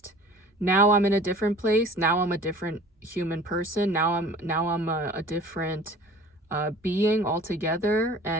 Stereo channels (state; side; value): normal; both; correlation 0.45